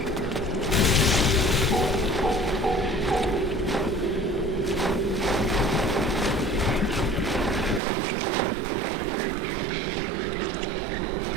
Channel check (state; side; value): drops out; left; at 7.8 s